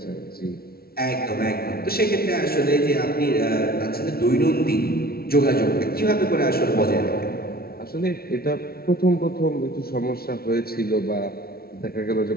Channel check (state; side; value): late; right; 0.44 ms